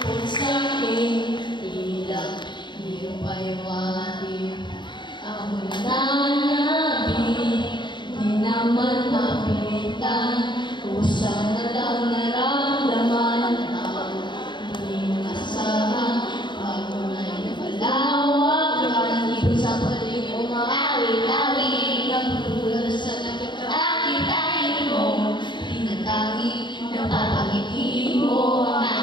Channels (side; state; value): right; late; 0.22 ms